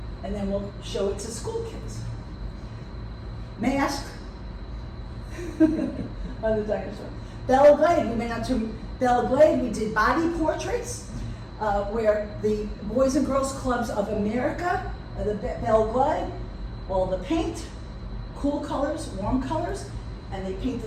And then we'll show it to school kids. Mask on the dinosaur. Belle Glade, we went out to Belle Glade, we did body portraits, where the Boys and Girls Clubs of America, the Belle Glade, all the paint, cool colors, warm colors, and they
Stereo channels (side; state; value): both; identical; correlation 1.00